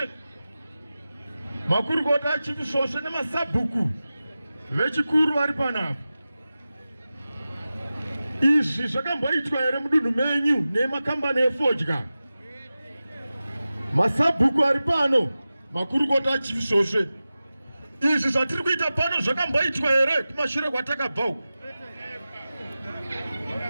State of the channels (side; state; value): both; inverted; correlation -0.95